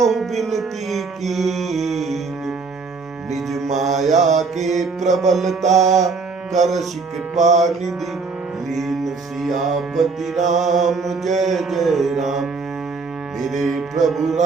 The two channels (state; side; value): quieter; left; 4.5 dB